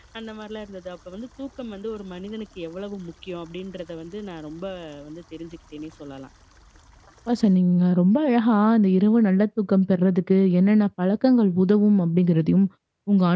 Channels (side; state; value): both; identical; correlation 1.00